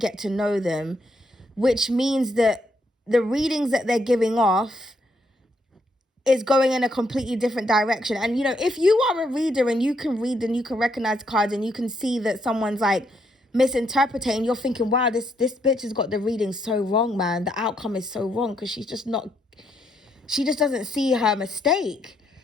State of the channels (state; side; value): normal; both; correlation 0.75